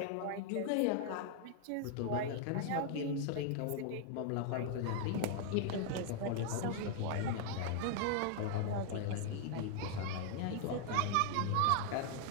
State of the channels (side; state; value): both; different; correlation 0.00